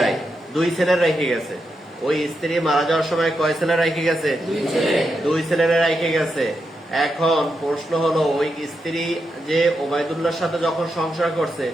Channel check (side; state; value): both; normal; correlation 0.85